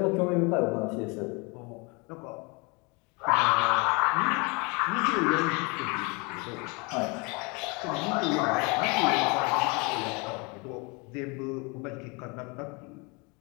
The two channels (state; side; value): quieter; right; 29.4 dB